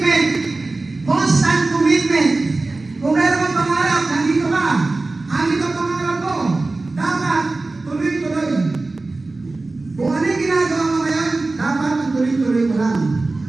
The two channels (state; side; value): quieter; left; 3.3 dB